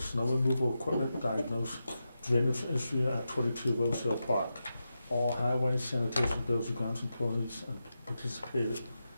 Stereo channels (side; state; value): both; inverted; correlation -0.89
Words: removal equipment, diagnose drainage issue at 22 Rose Hill Park. All highway sanitation buildings and grounds employees and participated